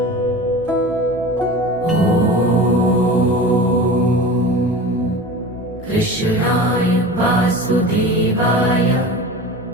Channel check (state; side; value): normal; both; correlation 0.34